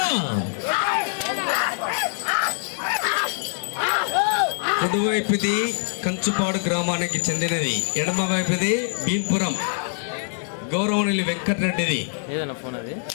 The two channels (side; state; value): right; silent; digital silence